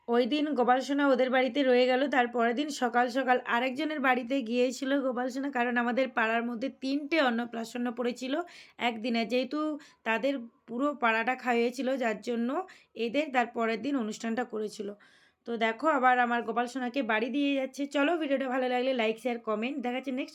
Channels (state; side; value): identical; both; correlation 1.00